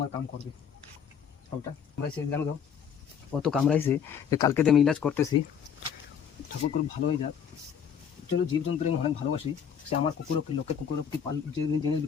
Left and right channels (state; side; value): quieter; right; 7.7 dB